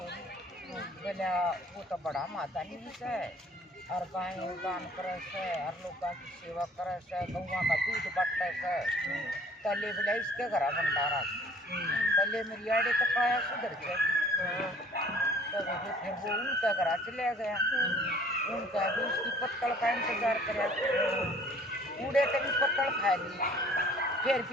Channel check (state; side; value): normal; both; correlation 0.54